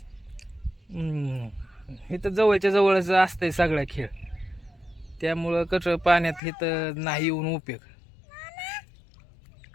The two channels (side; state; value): right; drops out; at 6.4 s